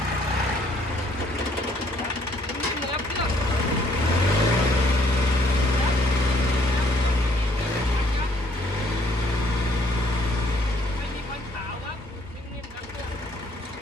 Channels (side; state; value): both; normal; correlation 0.65